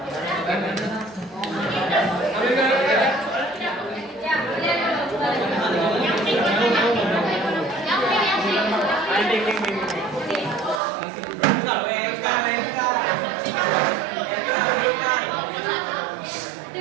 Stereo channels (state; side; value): drops out; left; at 10.8 s